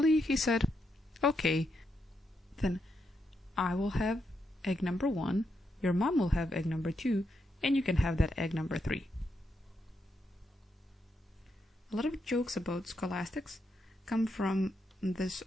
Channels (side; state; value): both; normal; correlation 0.82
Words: he said, okay, then I will have egg number 1, your mom will have egg number 2, and you can have that egg number 3. A lot of jokes about scholastics come from this